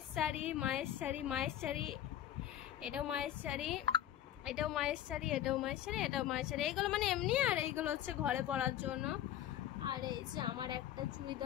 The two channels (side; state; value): right; quieter; 11.9 dB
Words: শাড়ি, মায়ের শাড়ি, এটাও মায়ের শাড়ি, এটাও মায়ের শাড়ি, এটাও মায়ের শাড়ি, এটাও মায়ের শাড়ি। এইগুলো মানে এমনি, আর এইগুলো হচ্ছে ঘরে পরার জন্য। আর এই যে আমার একটা